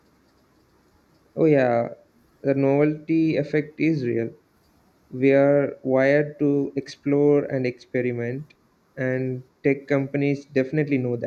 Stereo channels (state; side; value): identical; both; correlation 1.00